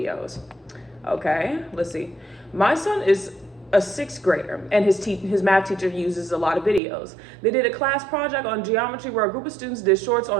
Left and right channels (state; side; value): drops out; left; at 6.8 s